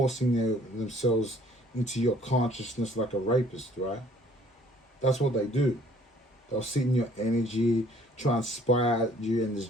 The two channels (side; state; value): both; normal; correlation 0.58